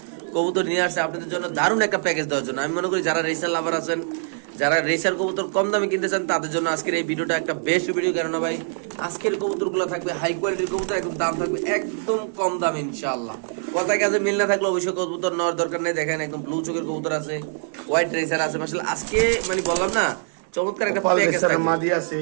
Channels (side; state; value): left; silent; 63 dB below the other